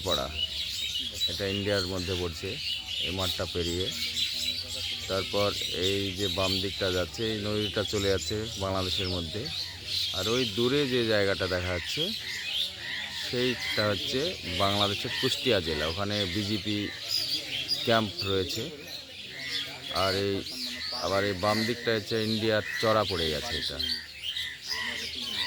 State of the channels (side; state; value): both; identical; correlation 1.00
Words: এটা ইন্ডিয়ার মধ্যে পড়ছে। এই মাঠটা পেরিয়ে তারপর এই যে বাম দিকটা যাচ্ছে, এই নদীটা চলে যাচ্ছে বাংলাদেশের মধ্যে। আর ওই দূরে যে জায়গাটা দেখা যাচ্ছে সেইটা হচ্ছে বাংলাদেশের কুষ্টিয়া জেলা, ওখানে বিজেপি ক্যাম্প রয়েছে। আর আবার এই বাম দিকটা হচ্ছে ইন্ডিয়ার চড়া পড়ে গেছে। এটা